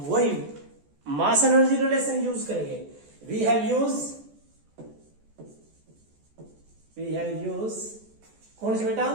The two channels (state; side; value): late; left; 14 ms